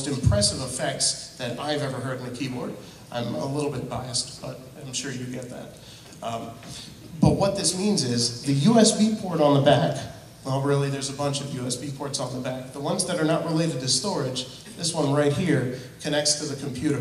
impressive effects that I've ever heard in a keyboard. I'm a little bit biased, but I'm sure you get that. But what this means is the USB port on the back, well, really, there's a bunch of USB ports on the back. The ones that are not related to storage, this one right here, connects to the computer.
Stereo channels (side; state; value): both; identical; correlation 1.00